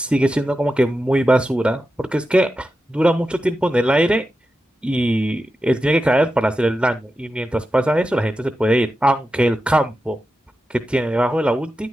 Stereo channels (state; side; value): normal; both; correlation 0.91